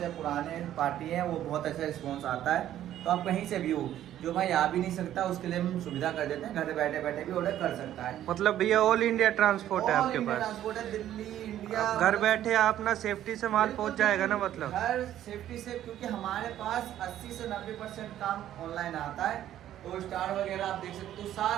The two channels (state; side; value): quieter; left; 12.0 dB